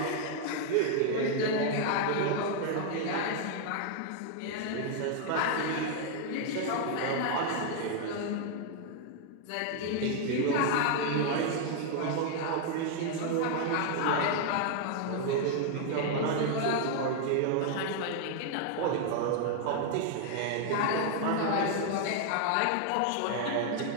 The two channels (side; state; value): both; different; correlation 0.00